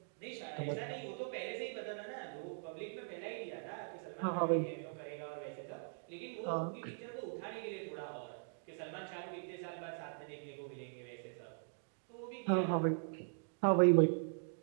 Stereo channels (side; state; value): left; silent; digital silence